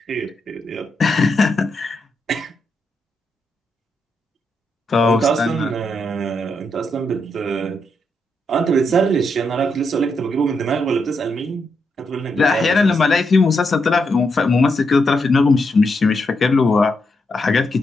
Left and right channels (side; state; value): both; normal; correlation 0.82